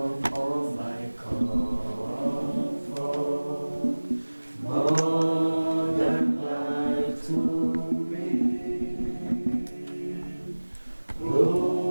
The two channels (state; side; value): inverted; both; correlation -1.00